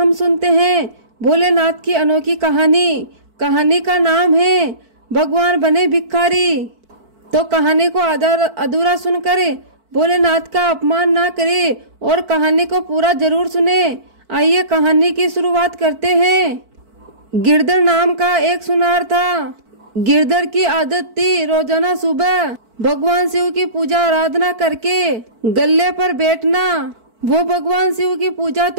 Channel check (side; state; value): left; late; 4.5 ms